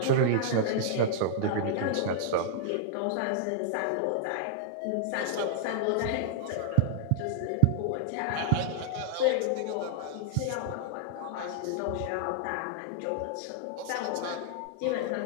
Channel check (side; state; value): both; different; correlation -0.01